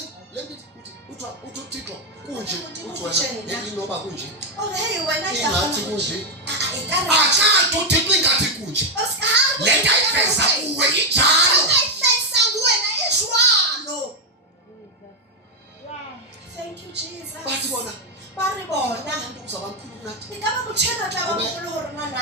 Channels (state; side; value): normal; both; correlation 0.02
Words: uThixo kunje uthi inoba kunje hey wena ingathi kunje akathi uThixo ingathi kunje lento ayifeza kuwe injalo ayifeza kuwena ishwalo. Thank you, Jesus. bathi bona bari bona uzabamkhulu kunathi ngaba kuthena xa bamkhulu horona na